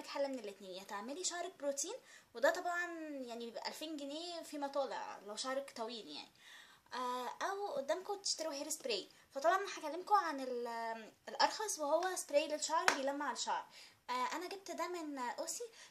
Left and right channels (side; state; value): both; identical; correlation 1.00